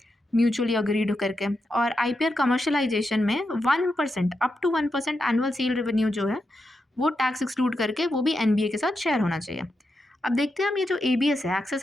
म्यूचुअली अग्रीड करके। और IPR कमर्शलाइजेशन में 1% up to 1% annual sale revenue जो है वो टैक्स एक्सक्लूड करके वो भी NBA के साथ शेयर होना चाहिए। अब देखते हैं हम ये जो ABS है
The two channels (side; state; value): both; normal; correlation 0.86